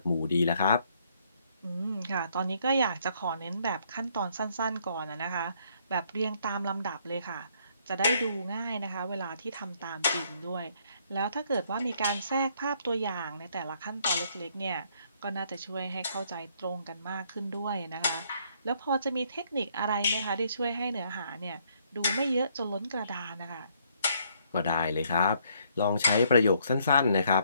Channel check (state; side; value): inverted; both; correlation -0.68